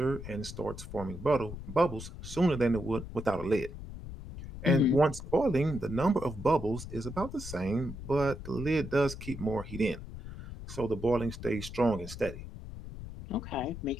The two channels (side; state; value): left; noise; rumble, 11 dB below the sound